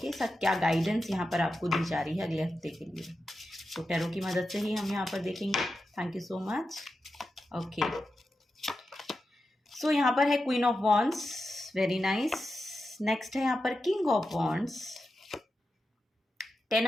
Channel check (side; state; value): both; normal; correlation 0.90